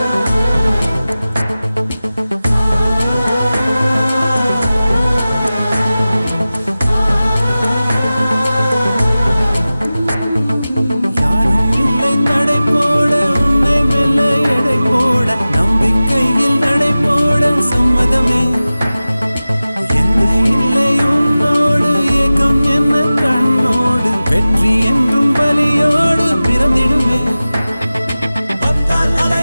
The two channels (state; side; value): inverted; both; correlation -0.96